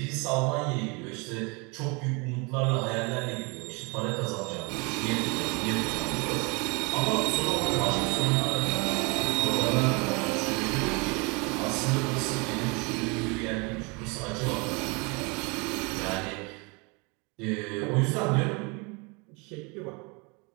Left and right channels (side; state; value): left; quieter; 29.8 dB